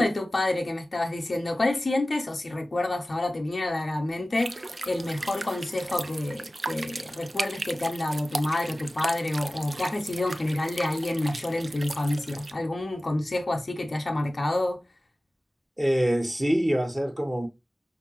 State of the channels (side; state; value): both; normal; correlation 0.96